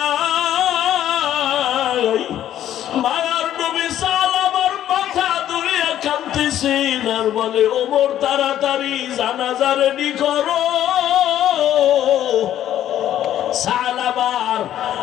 মায়ার নবী সাহাবার মাথা ধরে কাঁদতেছেন আর বলে, ওমর তাড়াতাড়ি জানাজা রেডি করো, সালাবার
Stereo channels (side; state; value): right; quieter; 11.6 dB